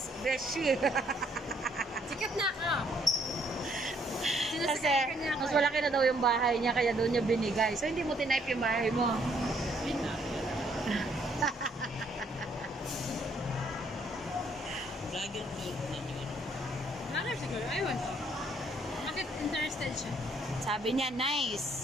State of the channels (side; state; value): both; normal; correlation 0.68